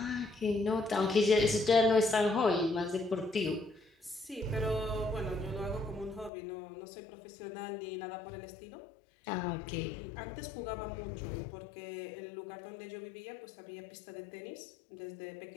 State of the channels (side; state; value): right; drops out; at 6.3 s